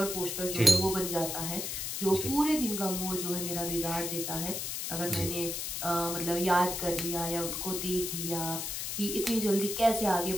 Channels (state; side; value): noise; left; hiss, 3 dB below the sound